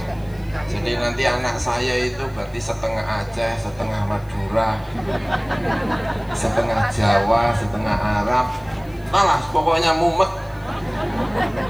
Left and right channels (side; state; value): left; noise; hiss, 29 dB below the sound